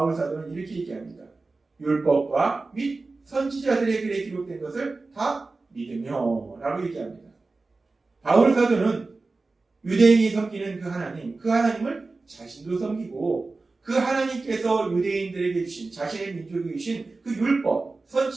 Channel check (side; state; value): left; quieter; 3.6 dB